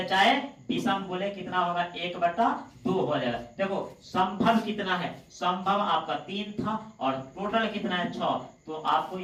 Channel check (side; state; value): both; identical; correlation 1.00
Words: चाहे विषम बोले कितना होगा 1/2 हो जाएगा। देखो संभव कितना है, संभव आपका 3 था और टोटल कितना है 6। तो आपको